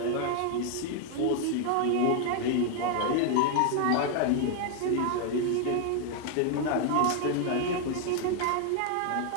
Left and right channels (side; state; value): both; different; correlation 0.00